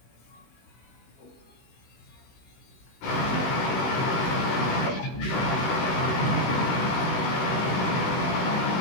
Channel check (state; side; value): late; right; 16 ms